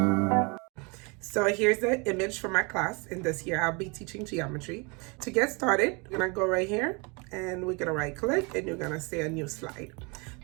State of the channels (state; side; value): quieter; left; 30.2 dB